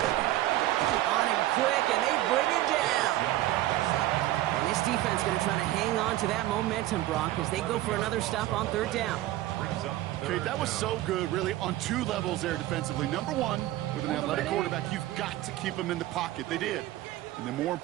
On him quick, and they bring it down. And this defense going to try to hang on to that momentum, Brock, as they go for another stop on 3rd down. Okay, that was so good, really, on 2 levels there defensively. Number 1, with an athletic quarterback, you've got to keep him in the pocket. They did. And then more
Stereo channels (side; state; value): left; quieter; 15.4 dB